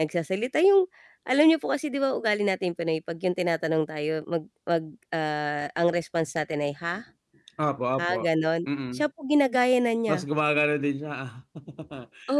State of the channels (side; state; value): both; identical; correlation 1.00